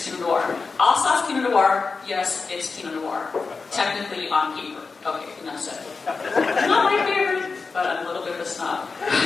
Pinot Noir. Alsace Pinot Noir? Yes, it's Pinot Noir. Technically on paper. Okay, enough said. Not my favorite, but I'm a little bit of a snob.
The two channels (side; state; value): right; quieter; 4.5 dB